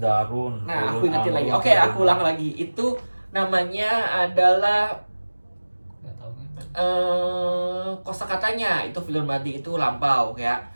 Nah, aku fi'lun ingetin lagi. amrun, Oke, aku ulang lagi. Itu namanya adalah Nggak tahu kan? kosakatanya. Itu fi'lun madi itu lampau ya.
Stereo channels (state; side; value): inverted; both; correlation -1.00